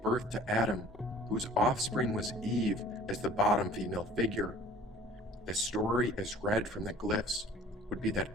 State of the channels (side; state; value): both; normal; correlation 0.49